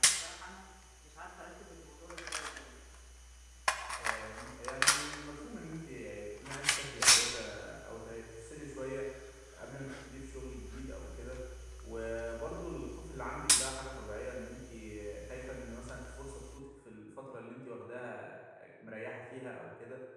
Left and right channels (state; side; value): identical; both; correlation 1.00